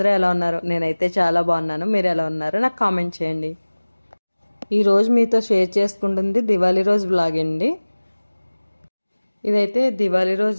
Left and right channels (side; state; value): both; inverted; correlation -1.00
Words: ఎలా ఉన్నారు? నేనైతే చాలా బాగున్నాను. మీరు ఎలా ఉన్నారు నాకు కామెంట్ చేయండి. ఈరోజు మీతో షేర్ చేసుకుంటుంది దివాళీ రోజు బ్లాగ్ అండి. ఇదైతే దివాళీ